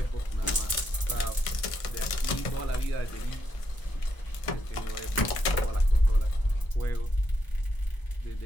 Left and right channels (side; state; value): right; late; 1.5 ms